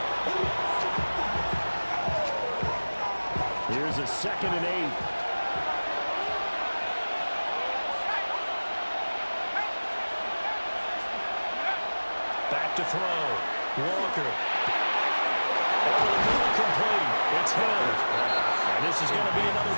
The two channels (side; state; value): both; inverted; correlation -1.00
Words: 8. Here's a 2nd and 8. Back to throw. Walker. Complete. It's Hill. And this is going to be another